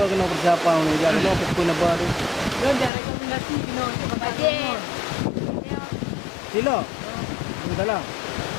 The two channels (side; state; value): right; drops out; at 2.9 s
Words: kena bersiapa ni. Jadi no buku na baru. Don dah rekomendasi kena bajet. Silo. Dalam.